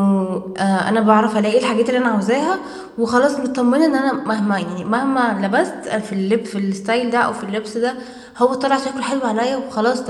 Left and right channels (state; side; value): identical; both; correlation 1.00